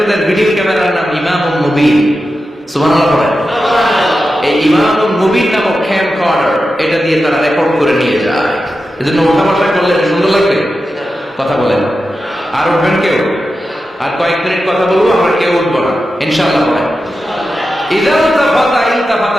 ভিডিও ক্যামেরার নাম ইমামুন মুবিন। সুবহানাল্লাহ পড়েন। এই ইমামুন মুবিন নামক ক্যামকর্ডার, এটা দিয়ে তারা রেকর্ড করে নিয়ে যায়। এজন্য ওঠা বসা করলে সুন্দর লাগবে। কথা বলেন। আর উঠবেন কেউ? আর কয়েক মিনিট কথা বলবো, আমরা কেউ উঠবো না ইনশাআল্লাহ। বলেন ইযা ইলতাফাতা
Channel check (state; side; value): normal; both; correlation 0.91